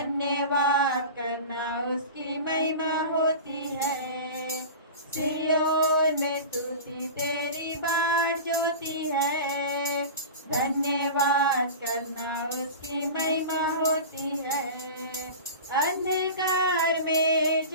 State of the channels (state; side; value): inverted; both; correlation -0.32